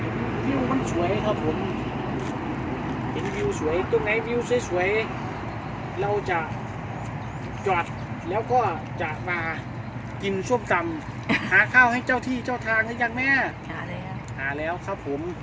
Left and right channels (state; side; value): identical; both; correlation 1.00